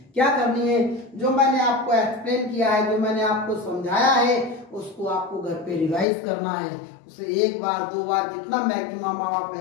क्या करनी है? जो मैंने आपको एक्सप्लेन किया है, जो मैंने आपको समझाया है, उसको आपको घर पे रिवाइज करना है। उसे एक बार 2 बार जितना मैक्सिमम आप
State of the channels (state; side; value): drops out; right; at 6.1 s